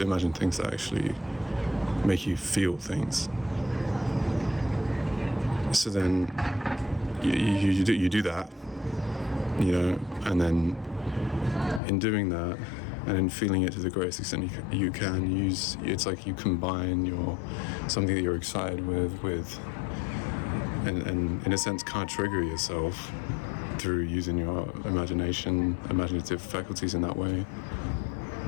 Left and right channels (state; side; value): drops out; right; at 11.8 s